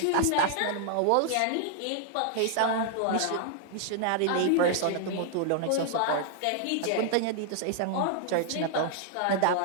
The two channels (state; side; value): different; both; correlation 0.00